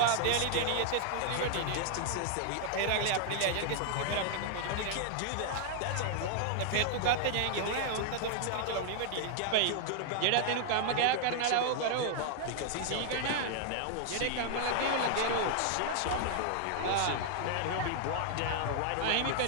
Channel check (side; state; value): both; different; correlation 0.00